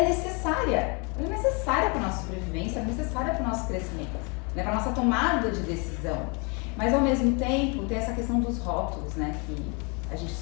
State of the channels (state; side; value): quieter; right; 32.8 dB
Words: necessária. Ela é necessária para a nossa sobrevivência, é necessária para o nosso crescimento, né? Para a nossa tomada de decisão. Mas ao mesmo tempo tem essa questão dos rótulos, né? Que a gente